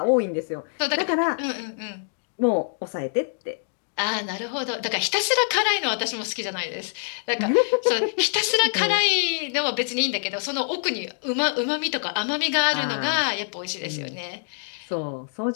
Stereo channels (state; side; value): silent; right; digital silence